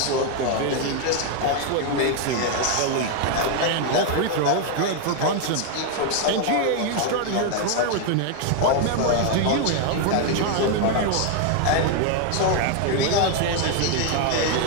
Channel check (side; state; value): both; different; correlation 0.00